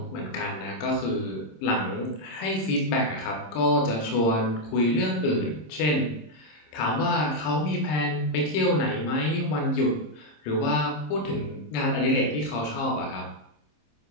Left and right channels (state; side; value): late; right; 26 ms